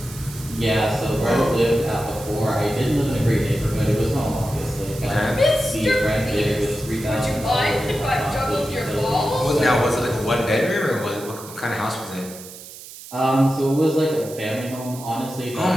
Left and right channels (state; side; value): noise; right; hiss, 15 dB below the sound